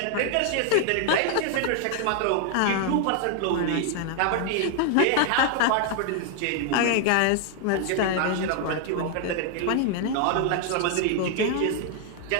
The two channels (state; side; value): different; both; correlation 0.00